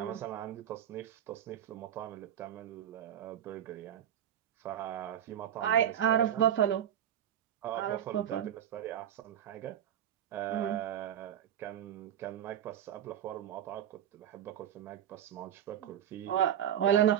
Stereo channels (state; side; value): quieter; left; 10.2 dB